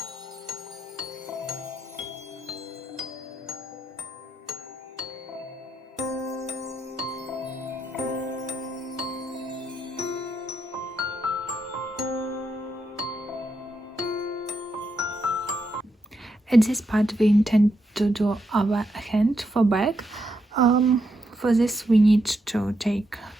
At this part we intend to do our hand for bag. For this we need to take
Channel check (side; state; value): both; normal; correlation 0.81